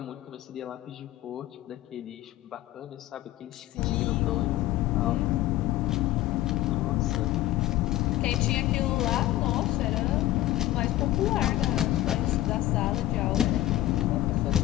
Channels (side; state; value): right; quieter; 15.2 dB